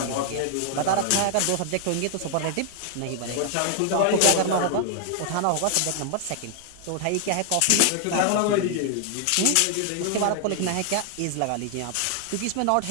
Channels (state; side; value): different; both; correlation 0.00